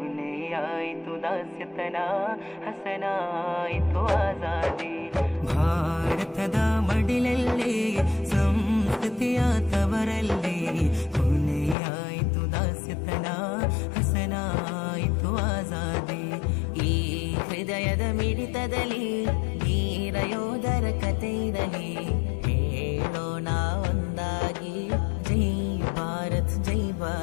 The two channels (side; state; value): right; drops out; at 11.8 s